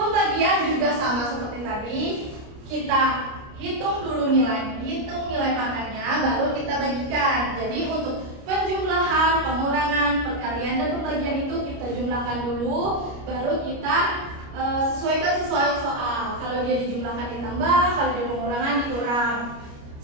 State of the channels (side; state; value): left; late; 29 ms